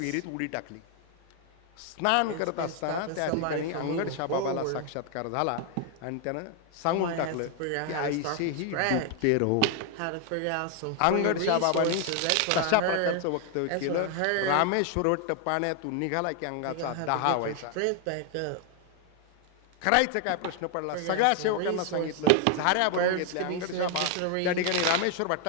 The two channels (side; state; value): both; different; correlation 0.00